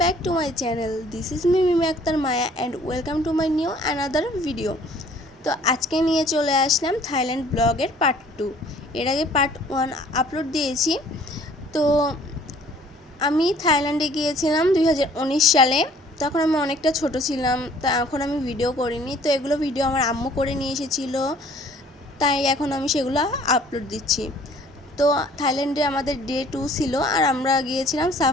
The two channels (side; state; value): both; normal; correlation 0.55